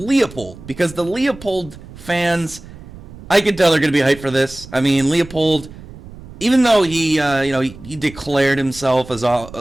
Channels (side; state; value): right; noise; rumble, 17 dB below the sound